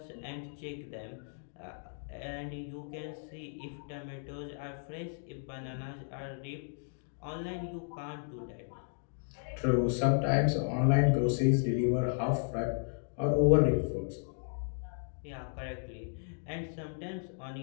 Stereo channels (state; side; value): silent; right; digital silence